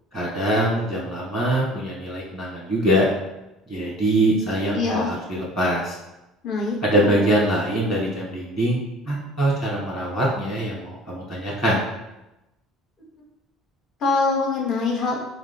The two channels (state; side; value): normal; both; correlation 0.47